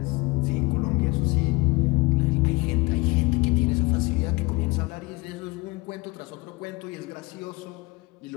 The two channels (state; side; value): quieter; right; 23.6 dB